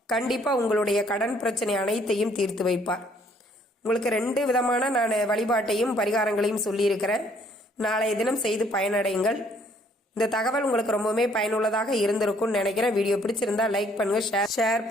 கண்டிப்பா உங்களுடைய கடன் பிரச்சனை அனைத்தையும் தீர்த்து வைப்பார். உங்களுக்கு 2 விதமான நான் வழிபாட்டையும் பரிகாரங்களையும் சொல்லியிருக்கிறேன். நாளைய தினம் செய்து பயனடையுங்கள். இந்த தகவல் உங்களுக்கு ரொம்பவுமே பயனுள்ளதாக இருந்திருக்கும்னு நினைக்கிறேன். வீடியோ பிடிச்சிருந்தா லைக் பண்ணுங்க, ஷேர்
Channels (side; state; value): both; normal; correlation 0.63